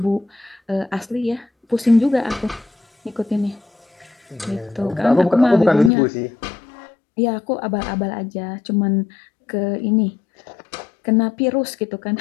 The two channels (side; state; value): right; drops out; at 5.9 s